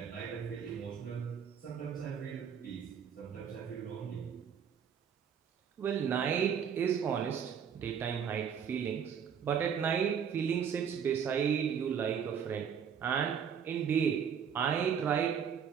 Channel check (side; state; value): left; quieter; 7.6 dB